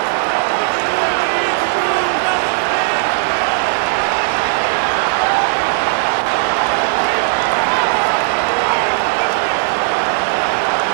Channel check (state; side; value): silent; left; digital silence